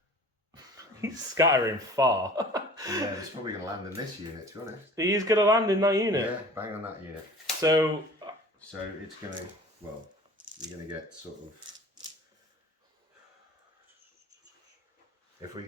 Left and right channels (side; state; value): both; normal; correlation 0.45